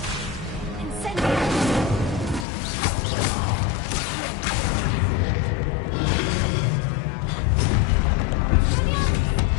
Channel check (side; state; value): right; drops out; at 2.5 s